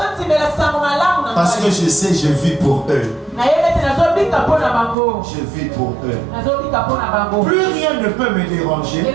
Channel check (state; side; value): drops out; left; at 5.0 s